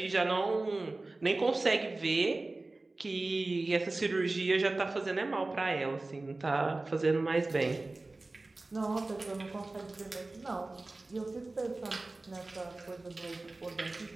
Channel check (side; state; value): left; quieter; 3.1 dB